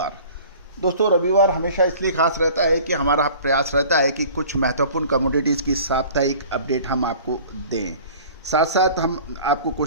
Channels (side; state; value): both; inverted; correlation -0.46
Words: दोस्तों रविवार हमेशा इसलिए खास रहता है कि हमारा प्रयास रहता है कि कुछ महत्वपूर्ण कमोडिटीज़ की साप्ताहिक अपडेट हम आपको दें। साथ साथ हम आपको